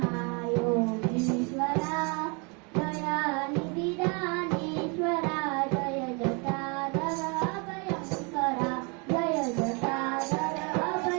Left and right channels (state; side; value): quieter; left; 32.8 dB